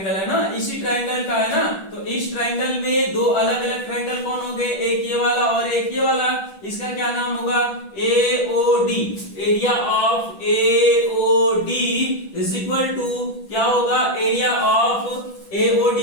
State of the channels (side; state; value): right; late; 10 ms